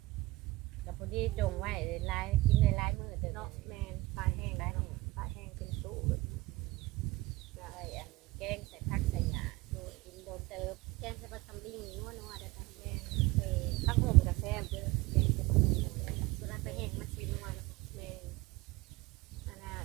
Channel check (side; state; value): left; quieter; 20.4 dB